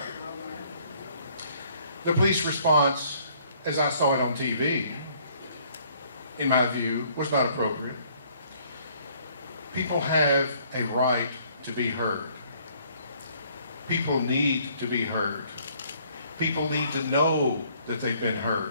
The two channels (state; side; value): inverted; both; correlation -0.62